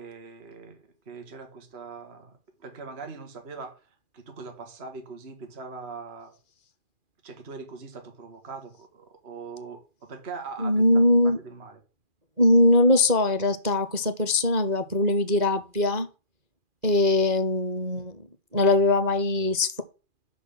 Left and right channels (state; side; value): late; left; 2.4 ms